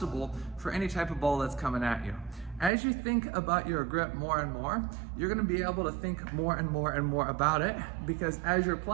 for any type of ball that's coming at you. As you think about your grip more and more, you're gonna be able to think more and more and more about it, because as you're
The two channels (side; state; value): left; drops out; at 2.7 s